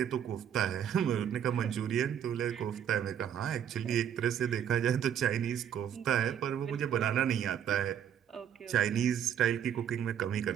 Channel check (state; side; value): quieter; left; 9.2 dB